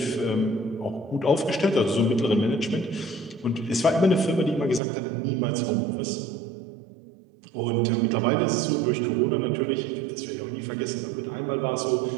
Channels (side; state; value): left; drops out; at 4.8 s